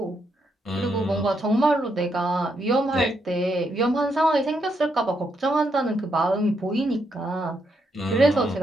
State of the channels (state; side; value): normal; both; correlation 0.79